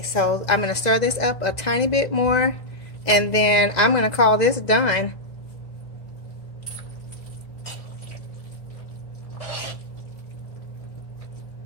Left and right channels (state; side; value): late; right; 2.0 ms